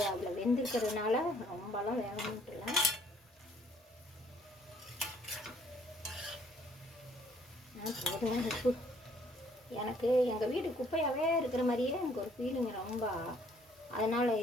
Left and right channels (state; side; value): normal; both; correlation 0.62